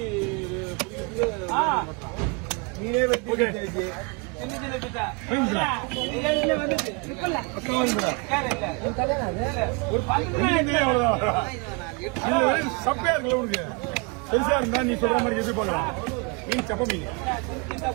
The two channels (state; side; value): quieter; left; 30.8 dB